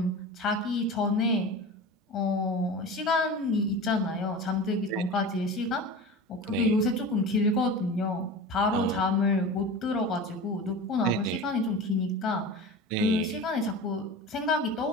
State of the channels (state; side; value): normal; both; correlation 0.32